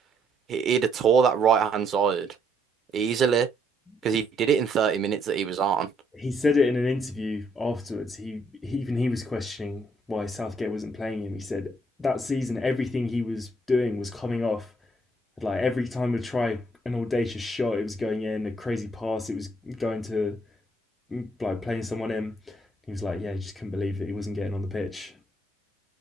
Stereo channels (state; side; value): normal; both; correlation 0.71